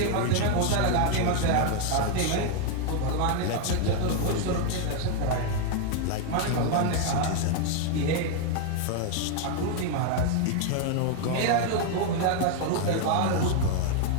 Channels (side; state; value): both; different; correlation 0.01